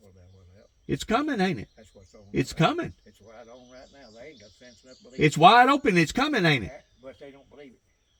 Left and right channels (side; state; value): both; identical; correlation 1.00